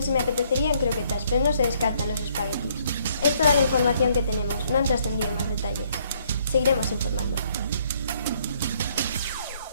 me apetecerían croquetas, pero no se descartan los espaguetis. Es toda la información que tenemos, no han trascendido más detalles. Seguiremos informando.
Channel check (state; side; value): inverted; both; correlation -0.67